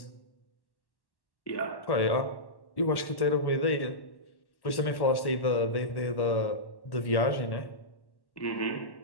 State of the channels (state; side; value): late; right; 1.1 ms